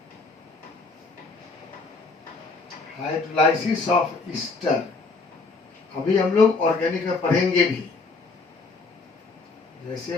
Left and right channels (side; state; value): right; quieter; 3.9 dB